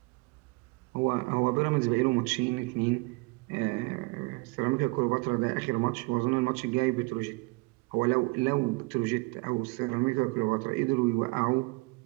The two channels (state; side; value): quieter; left; 27.1 dB